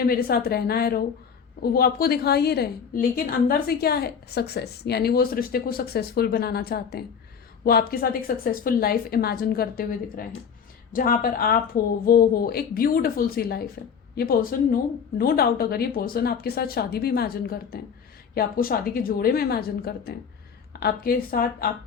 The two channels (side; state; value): right; quieter; 6.9 dB